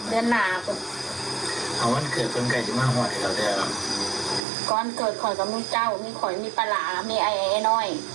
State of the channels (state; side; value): drops out; left; at 4.4 s